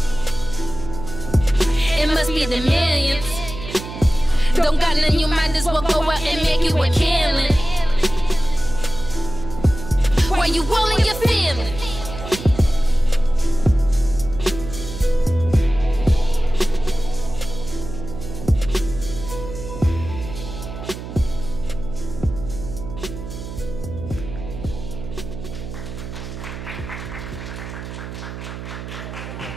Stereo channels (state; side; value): noise; right; hum, 10 dB below the sound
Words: It must be the millions. Don't got none, you might as well go out and make you a killing. Why you willing